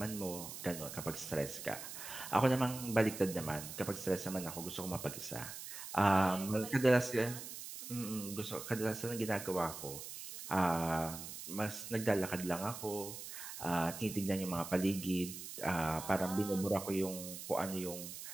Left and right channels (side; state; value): right; noise; hiss, 9 dB below the sound